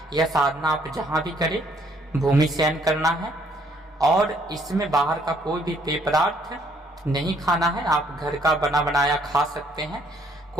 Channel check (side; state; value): both; normal; correlation 0.66